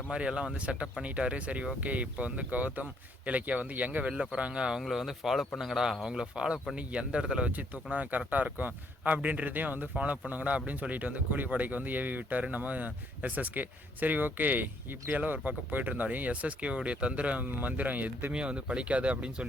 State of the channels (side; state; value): both; normal; correlation 0.69